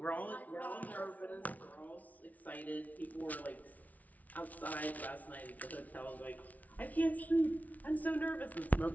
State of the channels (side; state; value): right; late; 0.073 ms